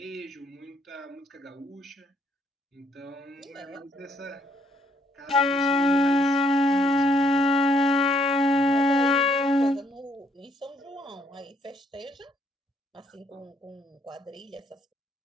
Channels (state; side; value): normal; both; correlation 0.69